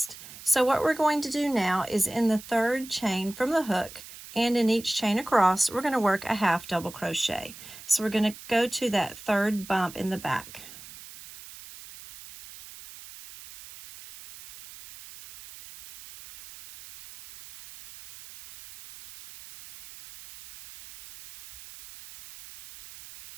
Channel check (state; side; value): noise; right; hiss, 16 dB below the sound